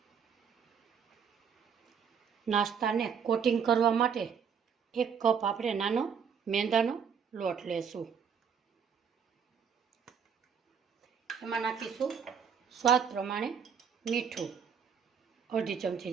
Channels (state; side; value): quieter; left; 7.1 dB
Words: નાસ્તાને કોટિંગ કરવા માટે 1 કપ આપણે નાનો મેંદાનો લોટ લેશું, એમાં નાખીશું સ્વાદ પ્રમાણે મીઠું, અડધી